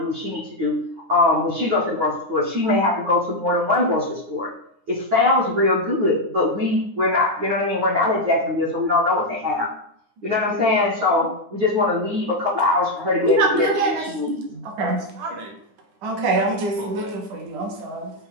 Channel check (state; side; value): late; left; 9.8 ms